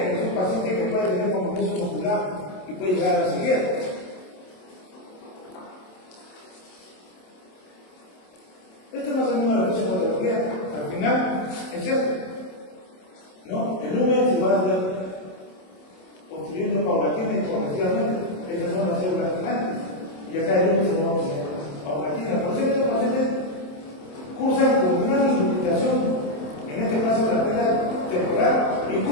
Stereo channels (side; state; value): right; late; 27 ms